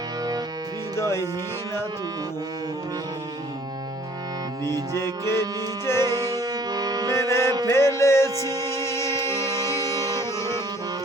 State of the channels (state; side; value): normal; both; correlation 0.55